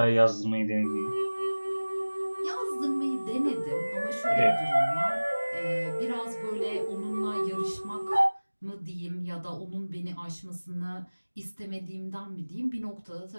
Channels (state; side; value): inverted; both; correlation -1.00